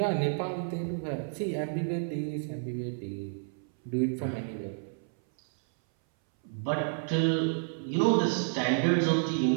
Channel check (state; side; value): silent; left; 58 dB below the other